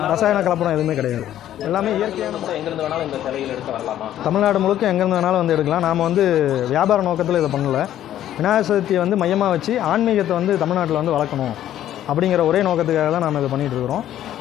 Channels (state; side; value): quieter; right; 11.9 dB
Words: ரசாயன கலப்படம் எதுவுமே கிடையாது. எல்லாமே இயற்கையான. எங்கேருந்து வேணாலும் இந்த சிலைகள் எடுக்க வரலாமா? தமிழ்நாடு முழுக்க எங்கேருந்து வேணாலும் வந்து எடுக்கலாம். நாம் வந்து வியாபார நோக்கத்தில் இதை பண்ணலை. விநாயகர் சதுர்த்தியை வந்து மையமாக வச்சு ஆன்மீகத்தை வந்து தமிழ்நாட்டில் வந்து வளர்க்கணும் அப்படிங்கிற ஒரே நோக்கத்துக்காக தான் நம்ம இதை பண்ணிகிட்டு இருக்கிறோம்.